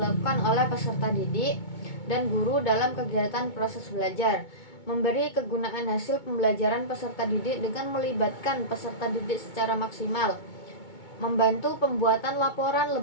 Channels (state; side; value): late; right; 2.2 ms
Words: oleh peserta didik dan guru dalam kegiatan proses belajar, memberi kegunaan hasil pembelajaran peserta didik dengan melibatkan peserta didik secara maksimal, membantu pembuatan laporan